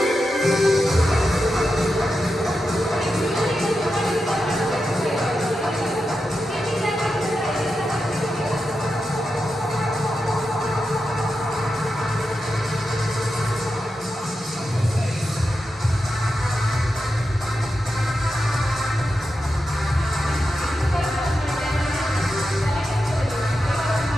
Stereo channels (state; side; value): normal; both; correlation 0.89